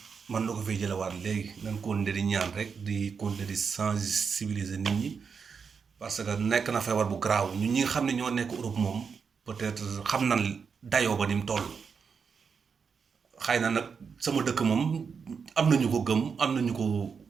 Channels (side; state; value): left; quieter; 5.9 dB